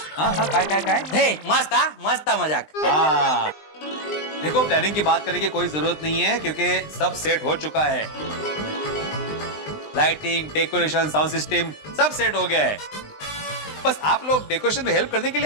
हाँ हाँ काय हे मस्त मजाक. हाँ देखो, प्लानिंग की बात करने की कोई जरूरत नहीं है क्योंकि सब सेट हो चुका है. लाइटिंग, डेकोरेशन, साउंड सिस्टम सब सेट हो गया है. बस आप लोग डेकोरेशन में हेल्प करने के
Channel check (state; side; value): late; right; 20 ms